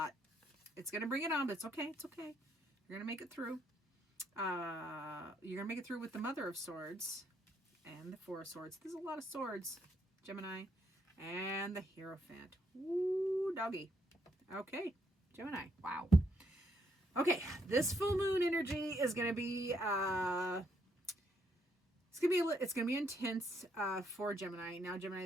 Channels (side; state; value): both; normal; correlation 0.73